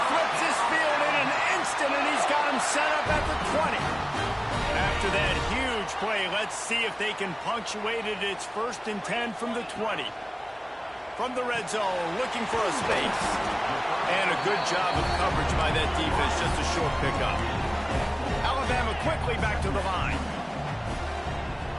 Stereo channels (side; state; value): both; identical; correlation 1.00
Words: flips his field in an instant, and he's got him set up at the 20. After that huge play, let's see if they can punctuate it. It's 1st and 10 from the 20. From the red zone, looking for a space. And a good job of coverage by that defense, just a short pickup. Alabama quickly back to the line.